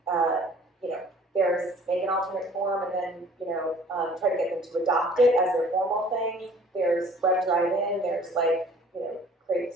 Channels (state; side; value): normal; both; correlation 0.52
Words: there's make an alternate form, and then try to get them to adopt it as their formal thing. There's web drive-in. There's